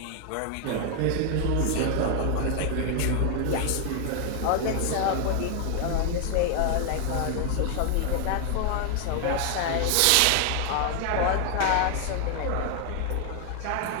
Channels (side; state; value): both; different; correlation 0.00